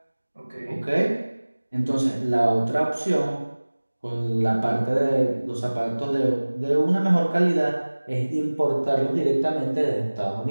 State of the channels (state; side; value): inverted; both; correlation -1.00